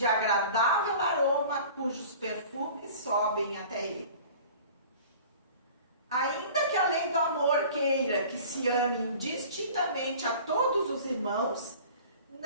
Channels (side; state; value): both; inverted; correlation -0.44